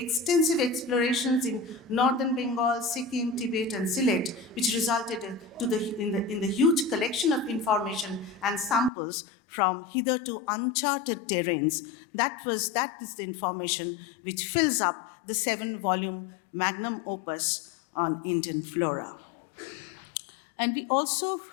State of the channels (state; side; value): drops out; right; at 8.9 s